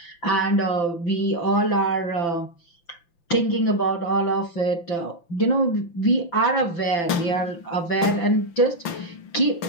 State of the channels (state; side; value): late; right; 5.9 ms